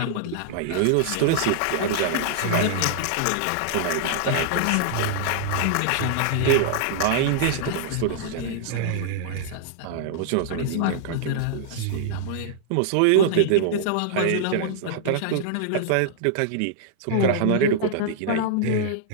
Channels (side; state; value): both; different; correlation -0.01